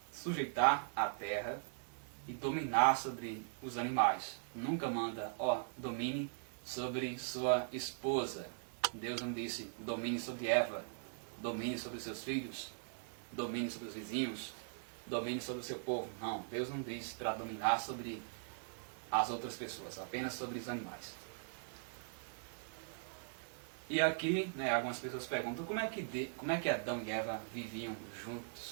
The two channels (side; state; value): left; silent; digital silence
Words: sujeitar a terra e dominar sobre os animais. Nunca manda, domine sobre sua esposa. Deus não disse, domine sobre Eva, domine sobre seus filhos, domine sobre os vizinhos, domine sobre o seu povo. Não, Deus não disse para dominar sobre as outras pessoas, apenas sobre os animais. E aqui, algumas pessoas perguntam como é que Adão e Eva viviam